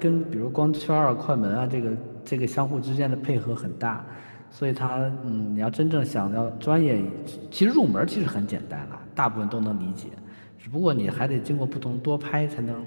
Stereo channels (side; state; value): both; inverted; correlation -1.00